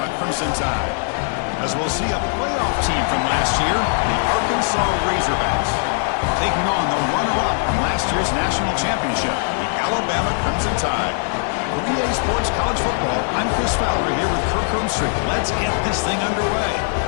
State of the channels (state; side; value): silent; right; 65 dB below the other